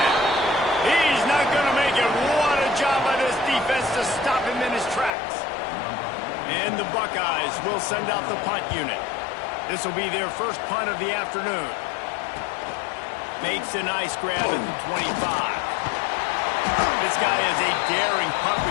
He's not going to make it. What a job by this defense to stop him in his tracks. And the Buckeyes will send out the punt unit. This will be their first punt of the afternoon. Makes a nice grab at the 25. This guy is a daring punt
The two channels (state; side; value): drops out; right; at 5.2 s